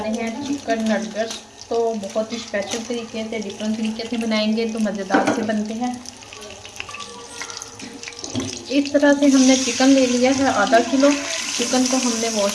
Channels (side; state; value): both; identical; correlation 1.00